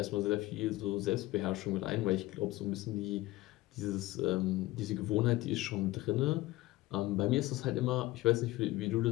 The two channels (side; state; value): right; quieter; 18.2 dB